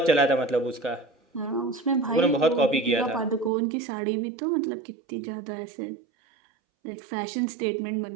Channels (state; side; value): drops out; left; at 3.5 s